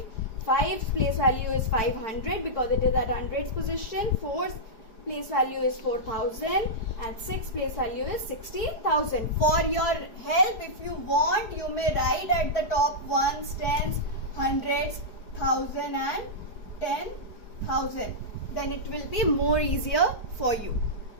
5's place value is 500 because it is at hundreds position, 4's place value is 4000 and 6th place value is 60,000. For your help, if you want, you may write at the top 1s, 10s, hundreds, 1000 and 10,000. Then it will be more easier for you.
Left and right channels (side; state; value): right; late; 4.8 ms